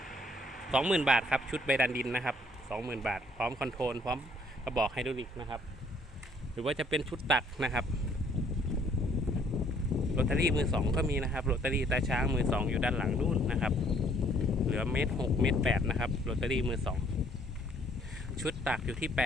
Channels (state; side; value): normal; both; correlation 0.63